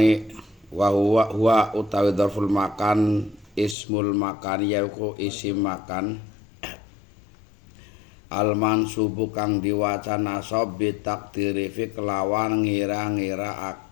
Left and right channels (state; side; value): drops out; right; at 3.8 s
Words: wa huwa utawi dzarful makan ismul makan yaiku isim makan al mansubu kang diwaca nasab bi takdiri fi kelawan